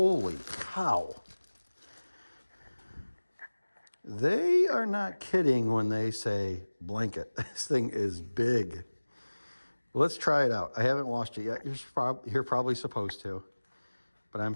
cow. They are not kidding when they say blanket. This thing is big. Let's try it out. I haven't washed it yet. You're probably supposed to, but I'm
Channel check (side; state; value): both; inverted; correlation -1.00